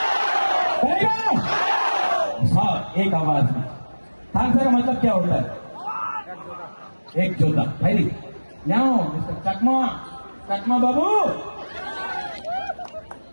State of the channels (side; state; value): both; inverted; correlation -1.00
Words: साहब एक आवाज में। थानसा का मतलब क्या होता है? एक जोधा भाई मिस्टर चकमा बाबू,